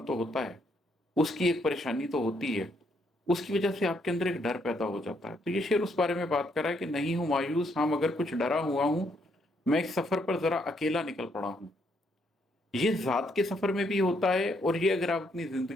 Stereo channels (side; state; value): both; normal; correlation 0.73